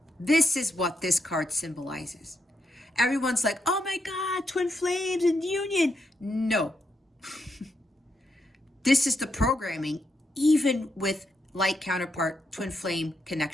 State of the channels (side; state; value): both; normal; correlation 0.82